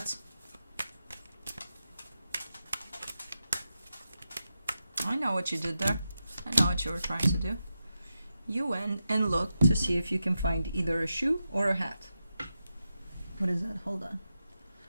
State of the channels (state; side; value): inverted; both; correlation -0.89